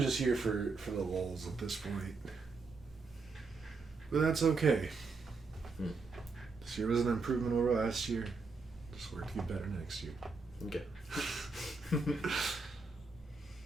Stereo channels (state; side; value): quieter; left; 4.2 dB